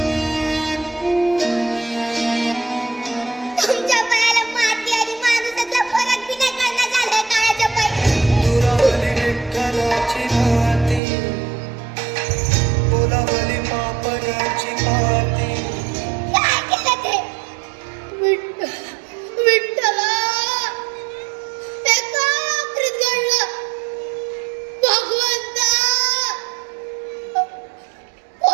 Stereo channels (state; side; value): drops out; left; at 11.0 s